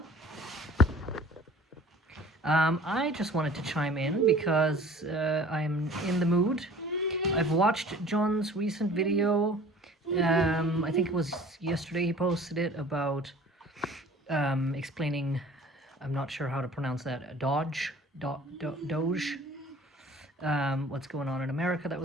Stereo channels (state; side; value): normal; both; correlation 0.47